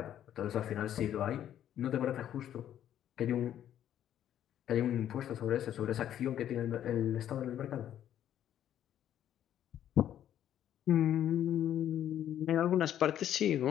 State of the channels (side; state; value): right; quieter; 10.9 dB